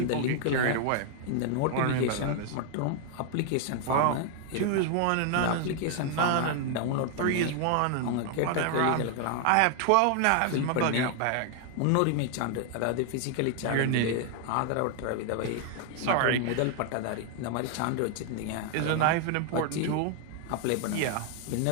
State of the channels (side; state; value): both; different; correlation 0.00